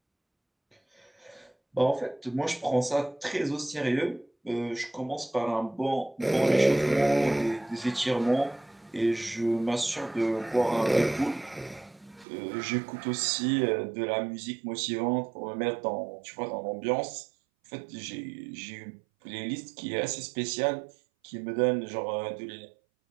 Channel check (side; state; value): left; drops out; at 12.2 s